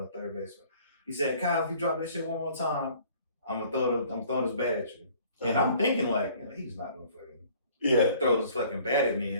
third baseman. He said, "Kyle, if you drop this shit one more time, I'm throwing this bat at you." And I'm thinking like, he's not gonna fucking throw this fucking bat at me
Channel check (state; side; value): inverted; both; correlation -0.55